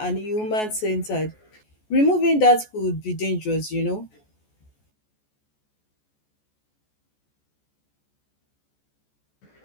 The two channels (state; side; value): late; right; 14 ms